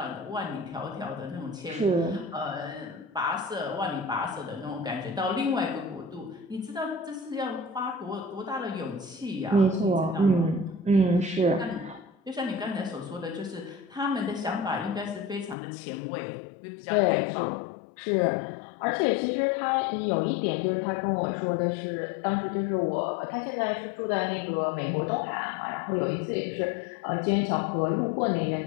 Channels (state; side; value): drops out; right; at 15.6 s